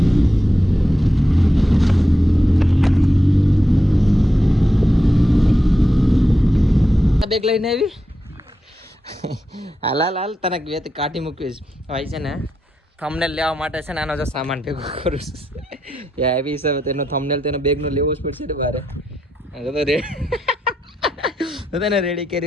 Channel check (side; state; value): both; normal; correlation 0.86